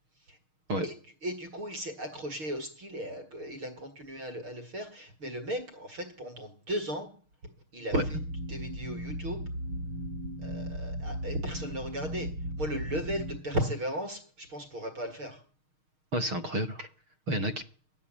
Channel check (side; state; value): left; late; 6.5 ms